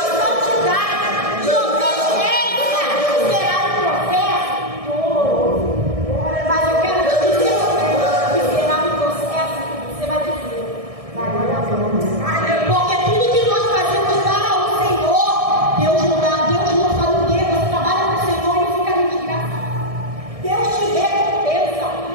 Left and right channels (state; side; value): late; left; 1.6 ms